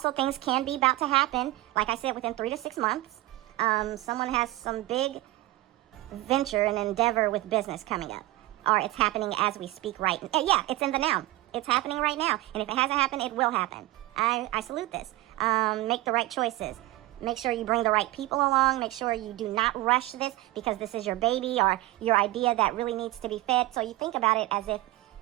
things can be about to happen, like I said, within 3 to 6 months. Someone has some big venture and endeavor with business coming up. Or it's happening as we speak right now. Yeah, it's in the now. It's happening right now. And if it hasn't happened, it will happen. I salute this. Make the right choices. Make sure you bring the right people along. Make sure you do not rush this because this is your baby or your idea that really needs to be fed. So you think about it as if,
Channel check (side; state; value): left; quieter; 18.4 dB